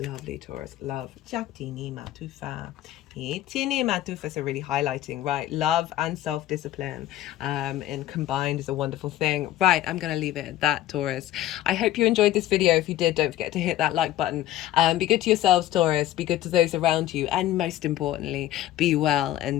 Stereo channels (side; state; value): right; quieter; 13.7 dB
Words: Taurus. Love. Jatini matufa. Itini matufa. So really highlighting, right? Love and self-discipline and combined is a wonderful thing. Right, I'm going to leave it at that, Taurus. I hope you enjoyed this video. If you did, don't forget to hit that like button. Be good to yourselves, Taurus. Be good to those around you. And most importantly, be well